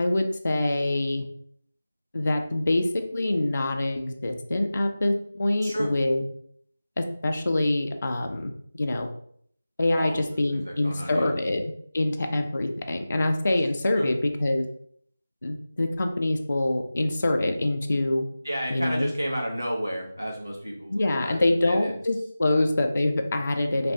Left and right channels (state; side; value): inverted; both; correlation -0.96